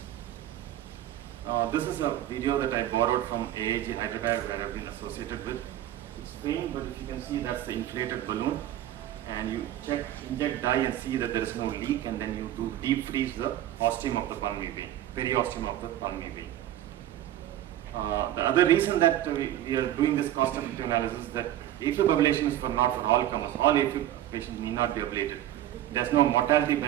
This is a video that I borrowed from AAG Hyderabad, where I've been associated with. It's faint, but if you can see, that's the inflated balloon, and you inject dye and see that there is no leak, and then you do deep freeze the ostium of the pulmonary vein, periosteum of the pulmonary vein. The other reason that we are doing this cost-effective analysis is that AFib ablation is not for all comers. All AFib patients need not be ablated. There's no mortality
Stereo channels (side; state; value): left; quieter; 12.6 dB